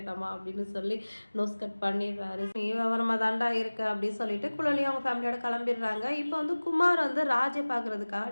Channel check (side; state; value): both; inverted; correlation -1.00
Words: அப்படின்னு சொல்லி நோஸ் கட் பண்ணிடுறாரு. நீ விவரமா தாண்டா இருக்கு அப்படின்னு சொல்லிட்டு குழலி அவங்க ஃபேமிலியோட கிளம்பிடுறாங்க. இப்போ வந்து குமார் வந்து ராஜை